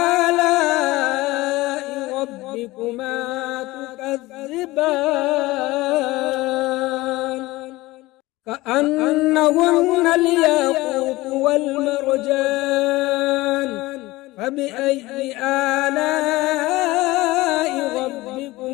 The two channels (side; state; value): right; quieter; 19.6 dB